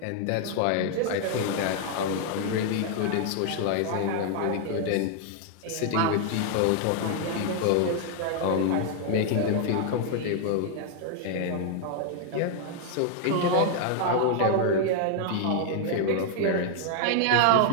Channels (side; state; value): both; different; correlation 0.00